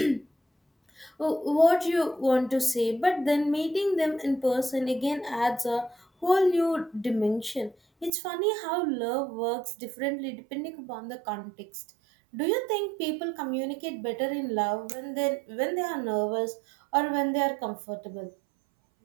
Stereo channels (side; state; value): left; drops out; at 8.1 s